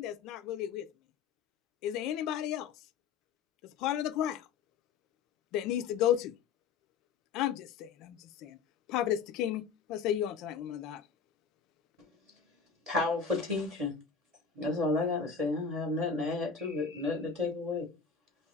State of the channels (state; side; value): quieter; right; 6.0 dB